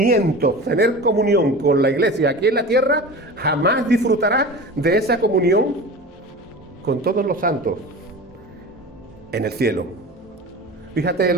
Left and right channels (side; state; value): both; normal; correlation 0.33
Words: tener comunión con la iglesia aquí en la tierra, jamás disfrutará de esa comunión con todos los santos en el cielo. Fíjate